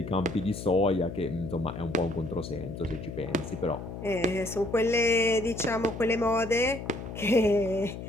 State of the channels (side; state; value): left; noise; hum, 9 dB below the sound